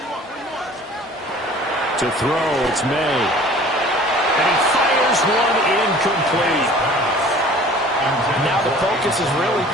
To throw, it's May. And he fires one incomplete. Now the focus is really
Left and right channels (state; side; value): normal; both; correlation 0.48